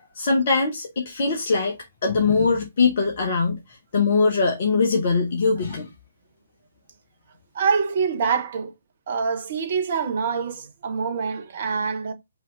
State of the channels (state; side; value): inverted; both; correlation -0.71